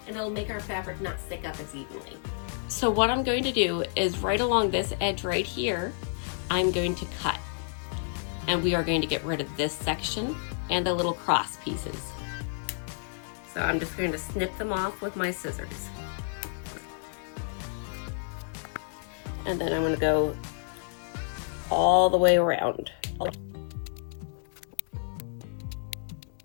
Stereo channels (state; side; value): silent; right; 58 dB below the other